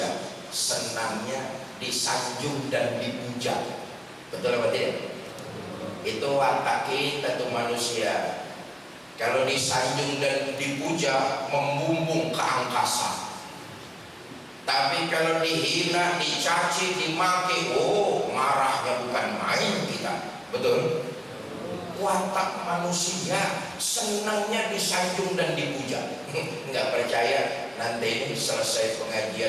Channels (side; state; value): both; identical; correlation 1.00